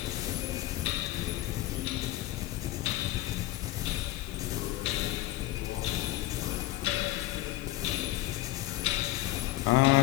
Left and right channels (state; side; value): quieter; right; 16.6 dB